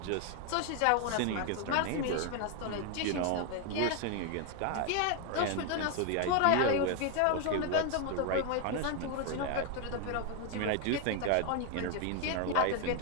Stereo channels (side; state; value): both; different; correlation 0.01